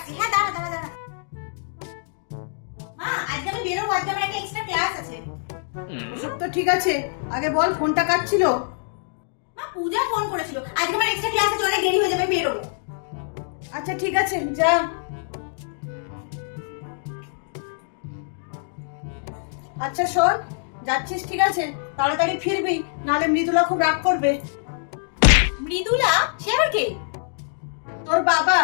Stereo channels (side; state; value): right; silent; digital silence